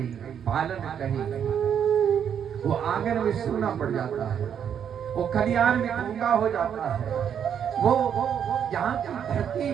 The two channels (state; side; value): quieter; left; 8.5 dB